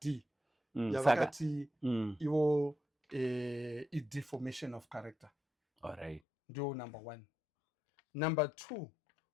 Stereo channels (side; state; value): right; drops out; at 6.2 s